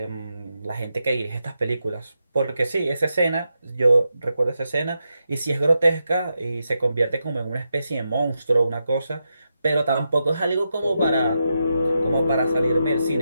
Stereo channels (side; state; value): both; inverted; correlation -0.86